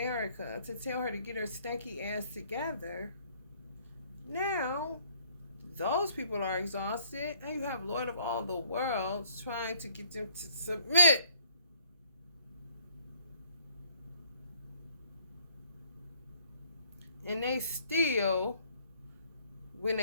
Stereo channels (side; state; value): both; inverted; correlation -0.62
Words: to tell her to get her stanky ass together, now those people are exhausted, and you have Lord of all the worlds trying to get them to submit. And they still, when